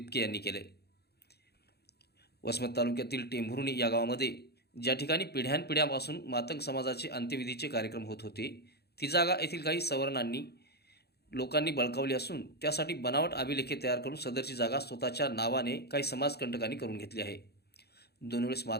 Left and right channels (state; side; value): late; right; 0.47 ms